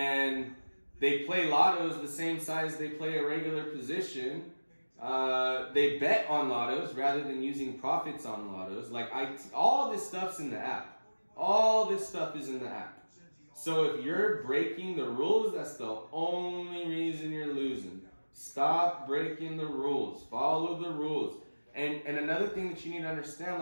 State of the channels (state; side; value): inverted; both; correlation -1.00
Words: they play lottos the same size they play a regular position. They bet on lottos rather than using profits on lottos. All this stuff's in the app. All this stuff is in the app. So if you're breaking the rules, that's the only reason you're losing. Stop breaking the rules. Follow the rules. And another thing that you need to understand,